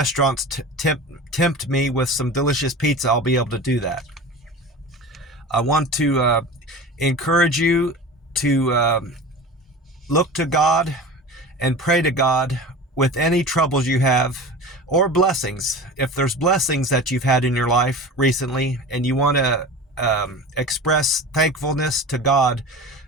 tempt me with some delicious pizza, I'll be able to do that. I want to encourage you to look to God and pray to God with any troubles you have, or blessings. If there's blessings that you've had in your life recently and you want to express thankfulness to God,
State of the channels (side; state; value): both; normal; correlation 0.34